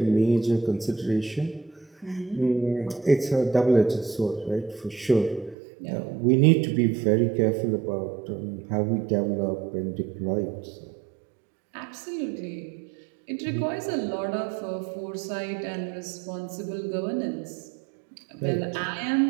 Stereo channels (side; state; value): left; drops out; at 5.6 s